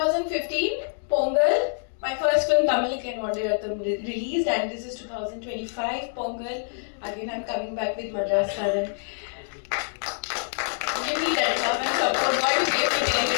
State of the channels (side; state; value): right; silent; digital silence